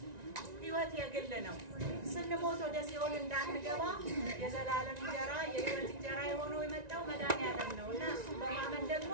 ህይወት የግል ነው ስንሞት ወደ ሲኦል እንዳንገባ የዘላለም እንጀራ የህይወት እንጀራ የሆነው የመጣው መድኃኒዓለም ነውና እሱ በማመን ደግሞ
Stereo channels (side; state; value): left; late; 1.9 ms